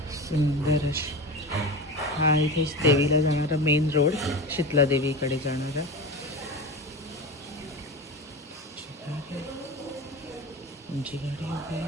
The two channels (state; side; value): normal; both; correlation 0.27